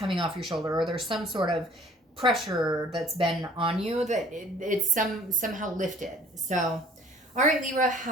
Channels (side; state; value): both; normal; correlation 0.53